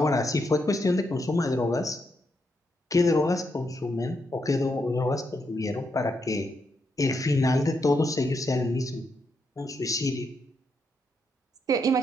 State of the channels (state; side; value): normal; both; correlation 0.81